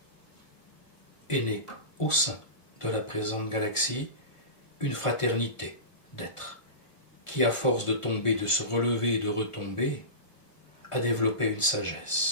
est née au sein de la présente galaxie une fraternité d'êtres qui, à force de tomber, de se relever et de retomber, a développé une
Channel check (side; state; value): right; late; 1.5 ms